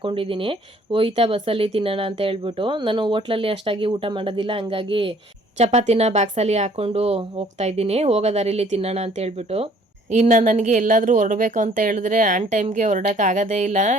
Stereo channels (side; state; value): both; normal; correlation 0.58